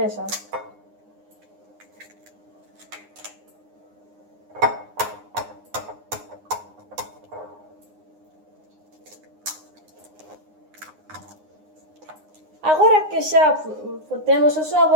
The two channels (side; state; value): left; late; 9.7 ms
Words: Agora que xa temos os